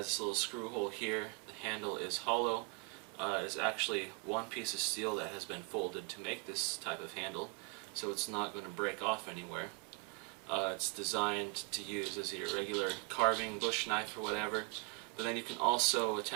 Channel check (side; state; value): left; quieter; 29.9 dB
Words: this little screw hole here. The handle is hollow. It is actually one piece of steel that has been folded to make this type of handle, so it's not going to break off anywhere. It's designed to use as your regular carving bush knife or whatever, but then you can also